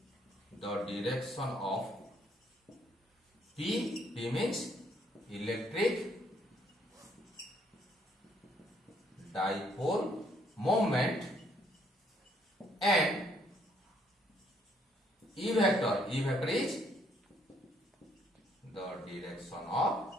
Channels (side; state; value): both; normal; correlation 0.68